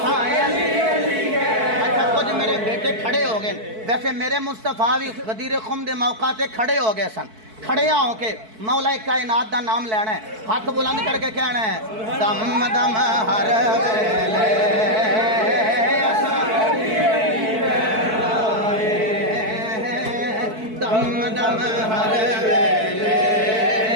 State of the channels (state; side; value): late; left; 4.6 ms